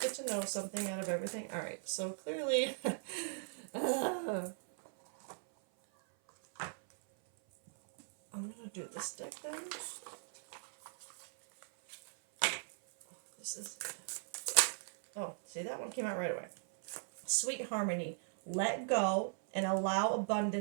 to know something out of everything. All right, so clearly, I'm gonna do this deck then. This is. Oh, see, that one came out right away. Sweet harmony. Let go and allow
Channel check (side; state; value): left; silent; 52 dB below the other